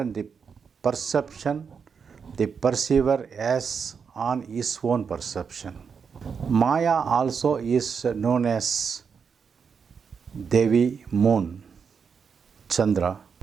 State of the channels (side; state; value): left; quieter; 6.2 dB